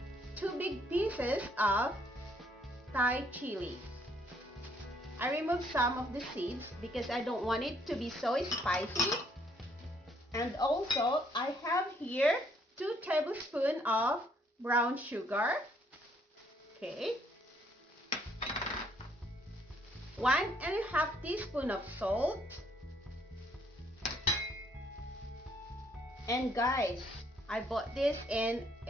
2 big pieces of Thai chili. I removed some of the seeds because I don't want it to be so spicy. And also, I have here 2 tablespoons of brown sugar. Okay. 1½ teaspoon of salt. And guys, I bought this in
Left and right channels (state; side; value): normal; both; correlation 0.68